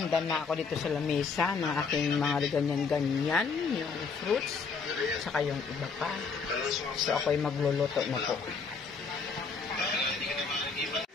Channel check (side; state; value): right; quieter; 5.1 dB